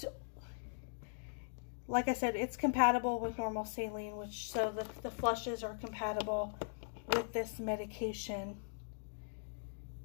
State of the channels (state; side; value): silent; right; digital silence